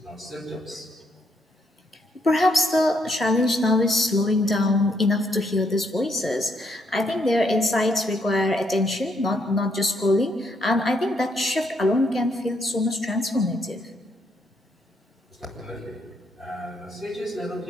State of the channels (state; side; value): normal; both; correlation 0.74